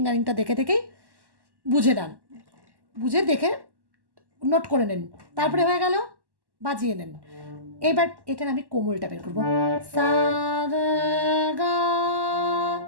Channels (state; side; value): late; left; 1.1 ms